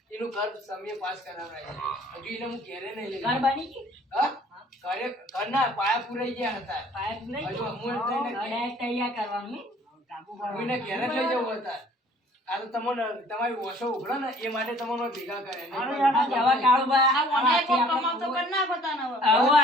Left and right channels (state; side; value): normal; both; correlation 0.53